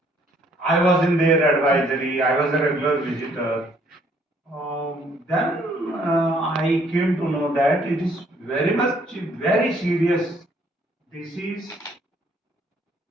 I was in their advisory. I was a regular visitor. Then I came to know that it is very serious disease,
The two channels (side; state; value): both; normal; correlation 0.64